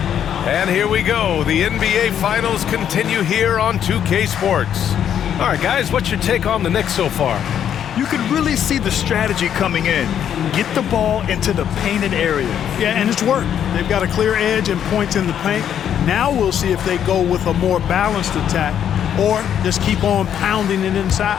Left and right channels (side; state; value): right; quieter; 9.4 dB